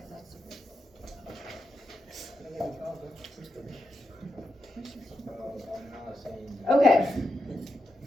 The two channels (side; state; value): both; normal; correlation 0.85